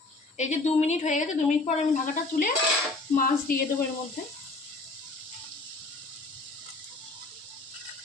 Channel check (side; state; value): right; quieter; 3.2 dB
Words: এই যে 2 মিনিট হয়ে গেছে। 2 মিনিট পর আমি ঢাকাটা তুলে মাছ দিয়ে দেবো এর মধ্যে।